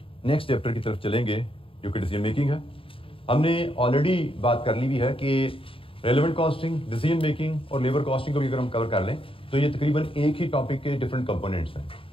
नेक्स्ट चैप्टर की तरफ चलेंगे जो कि डिसीजन मेकिंग है। हमने ऑलरेडी बात कर ली भी है कि रेलेवेंट कॉस्टिंग, डिसीजन मेकिंग और लेबर कॉस्टिंग को भी अगर हम कवर कर लें तो ये तकरीबन एक ही टॉपिक के डिफरेंट कंपोनेंट्स हैं।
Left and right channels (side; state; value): right; late; 0.26 ms